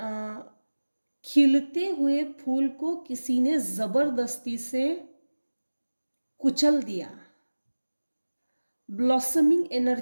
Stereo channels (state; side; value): inverted; both; correlation -1.00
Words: खिलते हुए फूल को किसी ने जबरदस्ती से कुचल दिया, ब्लॉसमिंग